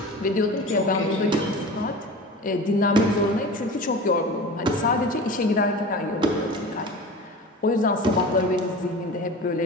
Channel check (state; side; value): normal; both; correlation 0.34